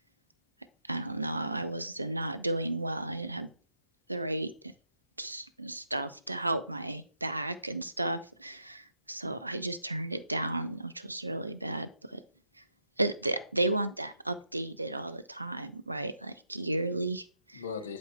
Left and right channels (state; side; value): inverted; both; correlation -0.83